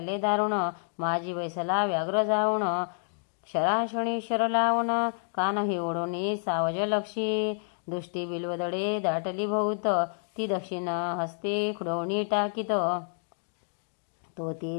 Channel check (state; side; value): silent; right; 59 dB below the other